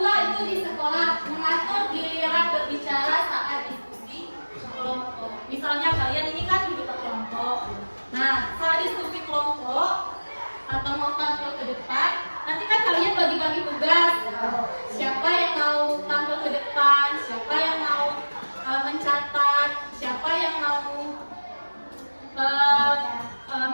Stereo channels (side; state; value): both; inverted; correlation -1.00